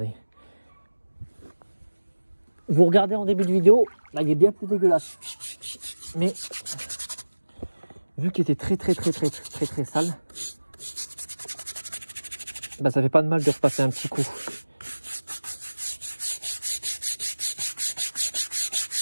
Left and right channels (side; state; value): both; inverted; correlation -1.00